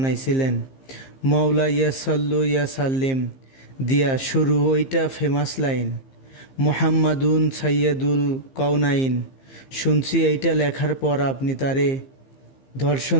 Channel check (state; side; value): late; right; 15 ms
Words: মৌলা ইয়া সাল্লু ইয়া সাল্লিম দিয়া শুরু। ওইটা ফেমাস লাইন, মোহাম্মাদুন সাইয়্যিদুল কওনাইন। শুনছি এইটা লেখার পর আপনি তারে